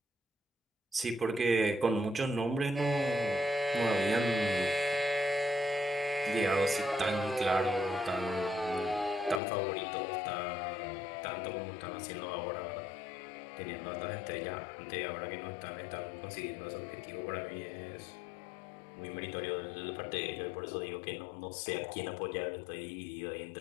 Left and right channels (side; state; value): right; drops out; at 9.4 s